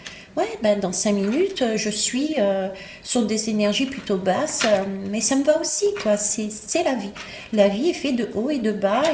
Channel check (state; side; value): identical; both; correlation 1.00